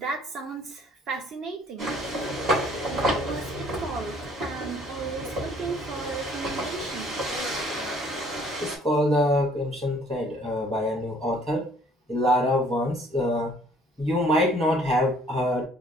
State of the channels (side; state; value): both; normal; correlation 0.59